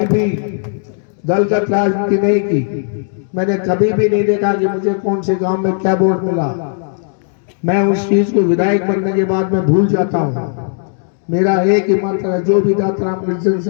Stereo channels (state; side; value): silent; right; digital silence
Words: भी दलगत राजनीति नहीं की। मैंने कभी भी नहीं देखा कि मुझे कौन से गांव में क्या वोट मिला। मैं उस चीज को विधायक बनने के बाद में भूल जाता हूँ। मेरा एक ही मंत्र है, जो भी दातारामगढ़